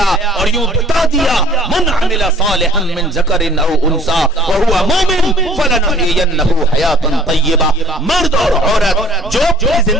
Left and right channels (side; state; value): both; normal; correlation 0.53